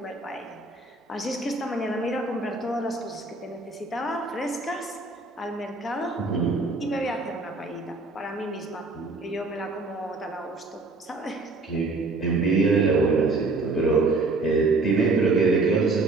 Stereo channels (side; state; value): left; quieter; 3.4 dB